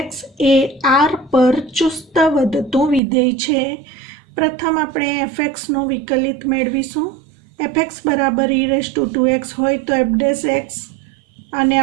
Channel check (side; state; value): left; drops out; at 3.0 s